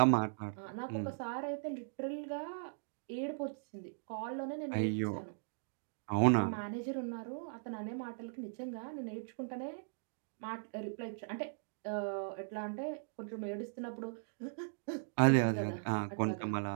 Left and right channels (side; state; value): left; silent; digital silence